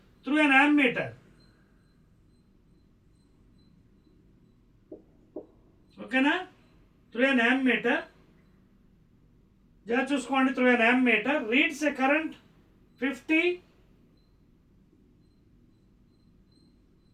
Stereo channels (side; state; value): both; identical; correlation 1.00